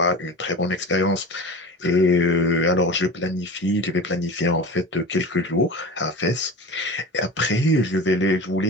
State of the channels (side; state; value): both; normal; correlation 0.33